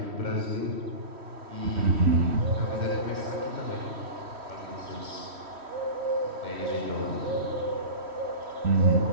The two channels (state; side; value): late; left; 3.1 ms